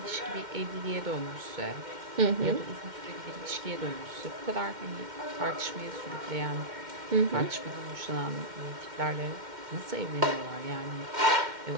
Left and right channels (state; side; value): late; left; 2.1 ms